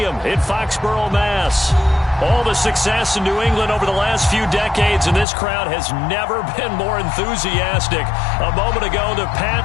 in Foxborough, Mass. All the success in New England over the last few decades, and this crowd has never been more enthusiastic. A moment ago, the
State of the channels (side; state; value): right; drops out; at 5.2 s